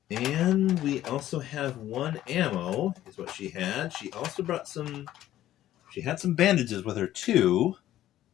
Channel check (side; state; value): right; quieter; 13.2 dB